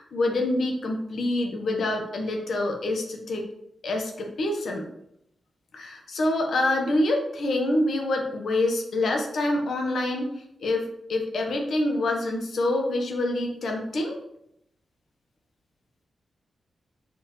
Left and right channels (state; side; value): normal; both; correlation 0.84